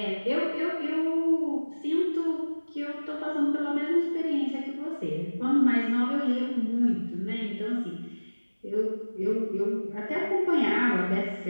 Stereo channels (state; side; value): inverted; both; correlation -1.00